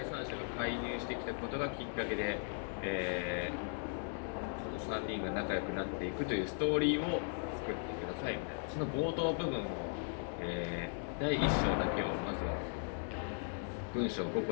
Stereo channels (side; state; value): right; silent; 53 dB below the other